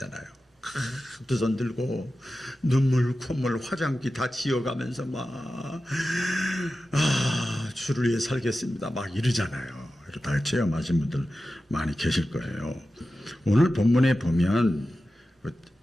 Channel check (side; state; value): both; normal; correlation 0.93